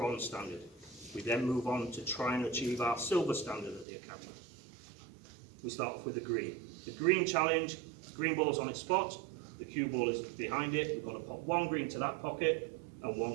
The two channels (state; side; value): drops out; left; at 3.9 s